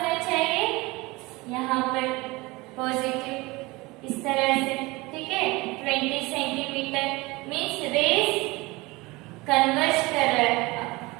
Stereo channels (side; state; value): left; quieter; 22.7 dB